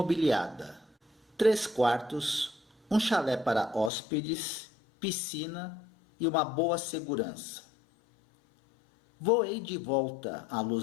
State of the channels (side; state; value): right; drops out; at 3.9 s